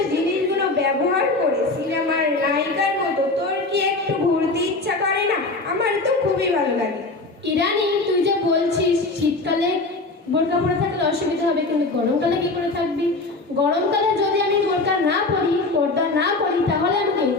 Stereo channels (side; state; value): right; quieter; 3.2 dB